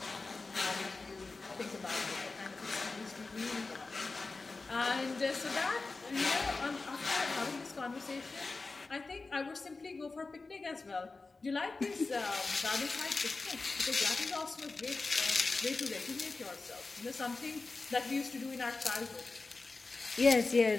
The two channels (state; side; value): quieter; right; 3.7 dB